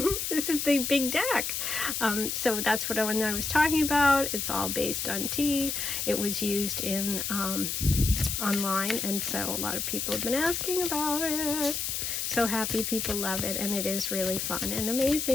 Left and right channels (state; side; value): noise; left; hiss, 2 dB below the sound